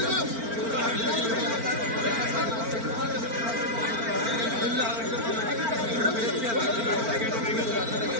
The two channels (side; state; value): left; late; 4.4 ms